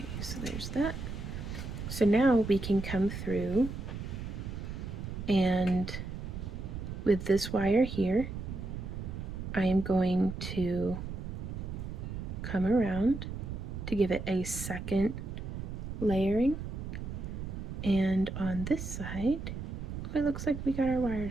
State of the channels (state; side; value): noise; right; rumble, 6 dB below the sound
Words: so there's that. So now we can come through and with this wire here, I am going to come around to give it a second layering. And on this side, it looks like we got our